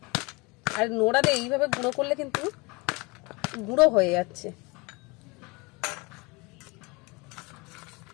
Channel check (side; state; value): right; quieter; 26.6 dB